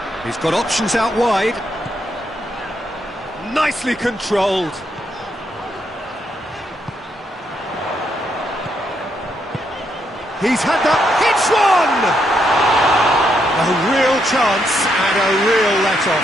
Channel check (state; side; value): normal; both; correlation 0.77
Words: He's got options out wide. Nicely controlled. He's had that. Hits one! A real chance and a real